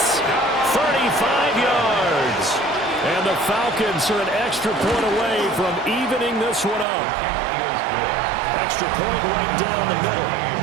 35 yards. And the Falcons are an extra point away from evening this one up. Extra point right down the middle.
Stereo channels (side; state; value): left; drops out; at 6.9 s